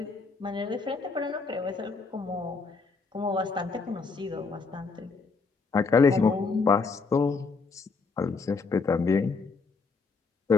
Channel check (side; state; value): right; quieter; 4.5 dB